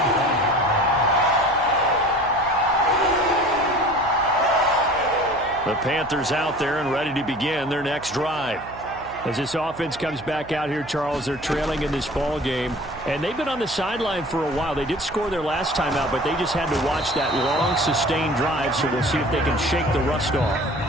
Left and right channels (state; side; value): noise; right; hum, 18 dB below the sound